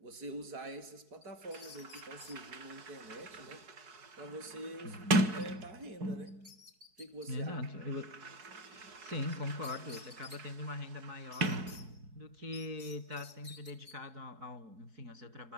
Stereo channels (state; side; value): late; left; 4.7 ms